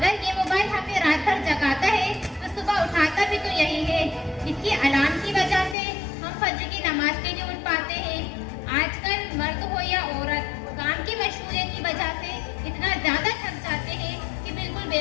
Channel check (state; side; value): drops out; right; at 5.8 s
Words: ये मोबाइल हमें रात भर जगाता है तो सुबह उठाता भी तो यही है। इसकी अलार्म की वजह से हम फजर की नमाज के लिए उठ पाते हैं। आजकल मर्द हो या औरत, काम की मशगूलियत की वजह से इतना ज़्यादा थक जाते हैं कि बिल्कुल